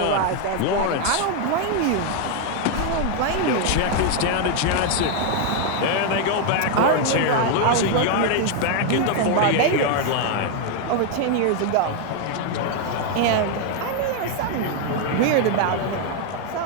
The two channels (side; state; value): both; different; correlation 0.01